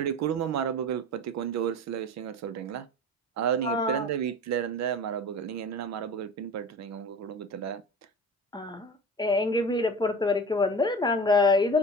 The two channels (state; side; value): normal; both; correlation 0.34